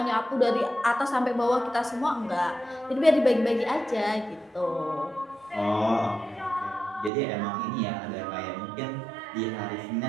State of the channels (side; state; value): left; drops out; at 7.1 s